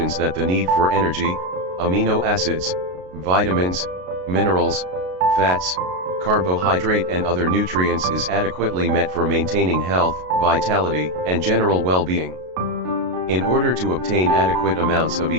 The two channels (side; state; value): left; late; 33 ms